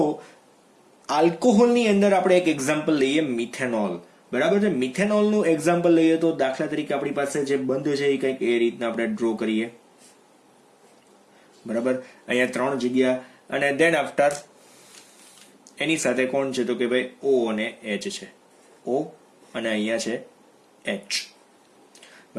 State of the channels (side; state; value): both; identical; correlation 1.00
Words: આલ્કોહોલની અંદર આપણે એક એક્ઝામ્પલ લઈએ, મિથેનોલ. બરાબર છે. મિથેનોલનું એક્ઝામ્પલ લઈએ તો દાખલા તરીકે આપણી પાસે જે બંધ છે એ કંઈક એ રીતના આપણે ડ્રો કરીએ. બરાબર, અહીંયા 3 જગ્યા અને દેન આફ્ટર એની સાથે કોણ છે તો કે ભાઈ O અને H છે. O અને અહીંયા છે H.